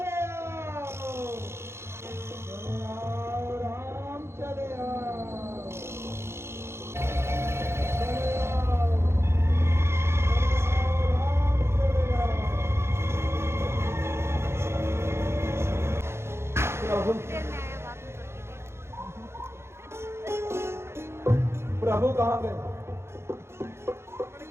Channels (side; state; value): left; late; 0.12 ms